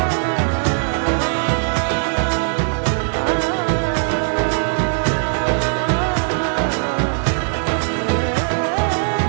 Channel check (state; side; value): silent; left; digital silence